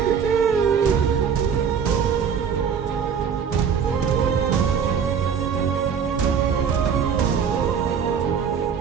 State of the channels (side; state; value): left; quieter; 7.1 dB